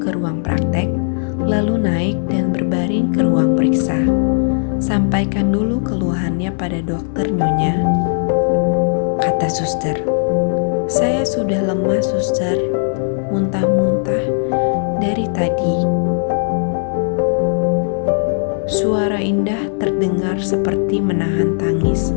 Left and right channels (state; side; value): silent; right; digital silence